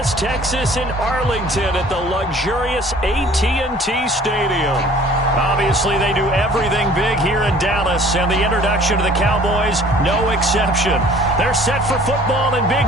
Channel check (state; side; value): normal; both; correlation 0.51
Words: Texas, and Arlington at the luxurious AT&T Stadium. Obviously, they do everything big here in Dallas, and the introduction to the Cowboys, no exception. They're set for football in